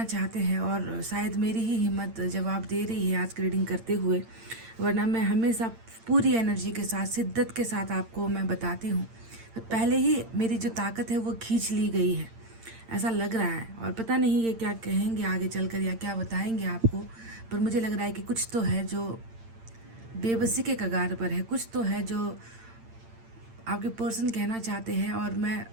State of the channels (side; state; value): left; late; 8.8 ms